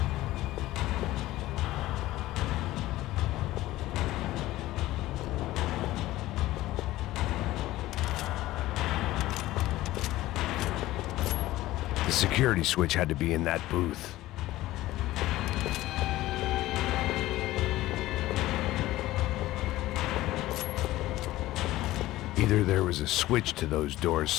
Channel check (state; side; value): quieter; right; 16.5 dB